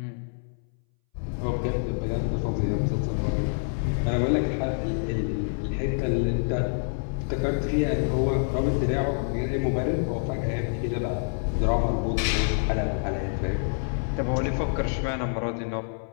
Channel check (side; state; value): right; silent; 60 dB below the other